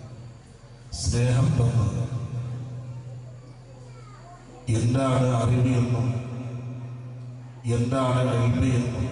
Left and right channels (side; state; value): both; identical; correlation 1.00